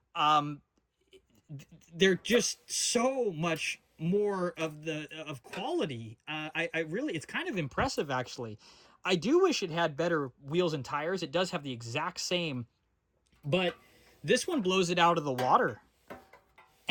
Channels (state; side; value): identical; both; correlation 1.00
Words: um, they're just so much more of quality. I really, it's kind of impressive, actually. I do wish it had better wheels and tires. It does have the exact same, but this one blows it out of the water.